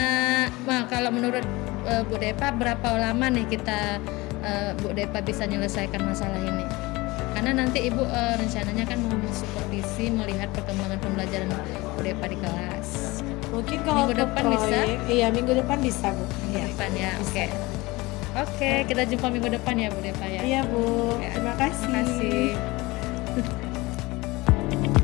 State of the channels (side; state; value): right; quieter; 22.0 dB